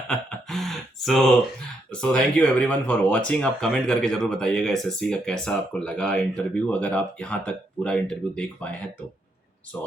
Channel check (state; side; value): normal; both; correlation 0.77